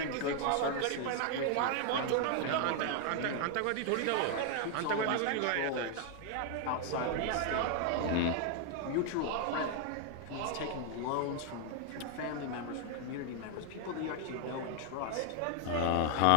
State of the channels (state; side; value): different; both; correlation 0.00